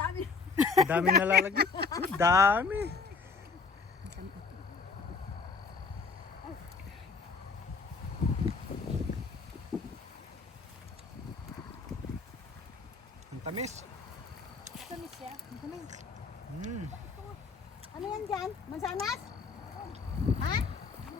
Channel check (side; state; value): right; quieter; 4.7 dB